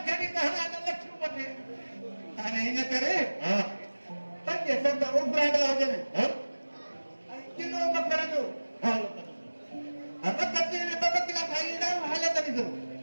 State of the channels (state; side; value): inverted; both; correlation -1.00